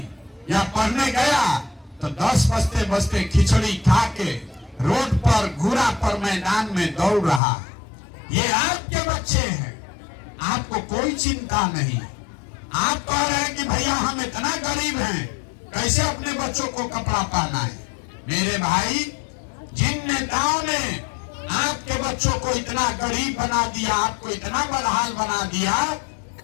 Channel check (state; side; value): drops out; right; at 7.4 s